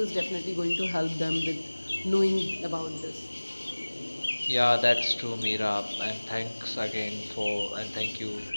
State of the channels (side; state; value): both; inverted; correlation -1.00